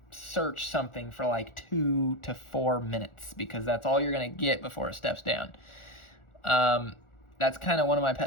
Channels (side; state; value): right; late; 1.4 ms